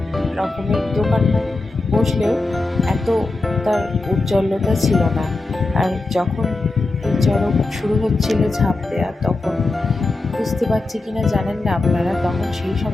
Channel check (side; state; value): right; quieter; 3.2 dB